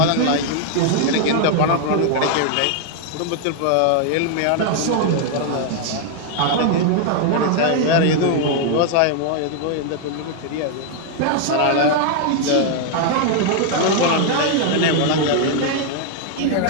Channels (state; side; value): different; both; correlation 0.00